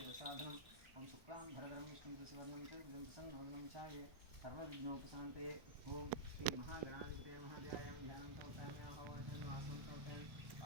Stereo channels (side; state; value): left; late; 1.1 ms